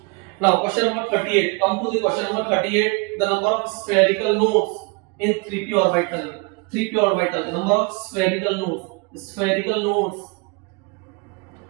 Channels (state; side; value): quieter; left; 29.7 dB